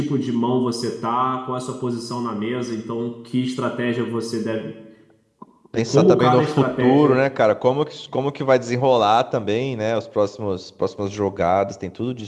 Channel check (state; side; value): identical; both; correlation 1.00